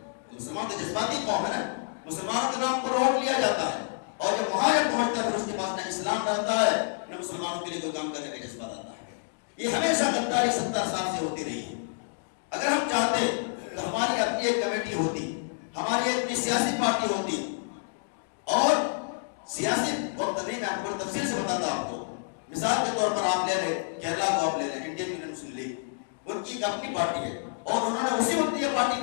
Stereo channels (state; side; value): silent; right; digital silence